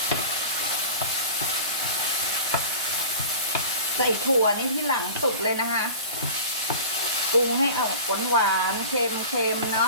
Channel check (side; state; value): both; inverted; correlation -0.38